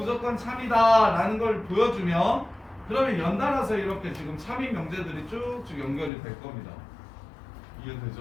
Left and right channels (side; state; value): right; drops out; at 6.1 s